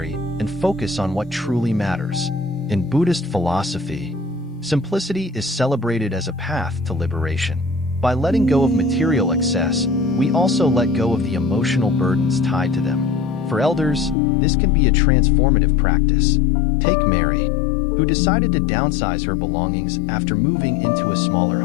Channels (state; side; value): drops out; right; at 14.2 s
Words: and focus on what truly matters. In Buddhist philosophy, simplicity is celebrated as a path to liberation. By letting go of material excess, we also let go of the emotional burdens tied to them. For elders, this can be a transformative practice. Take Mary, who decided to downsize her belongings after moving into a smaller